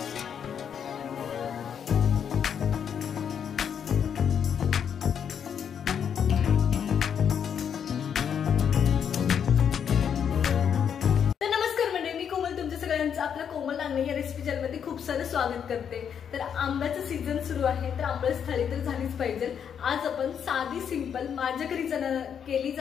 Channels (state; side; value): quieter; right; 7.9 dB